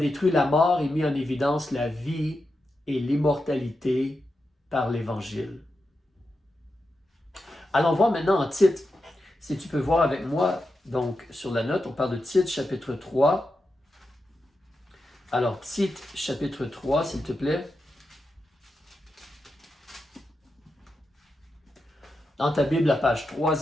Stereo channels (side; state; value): both; normal; correlation 0.88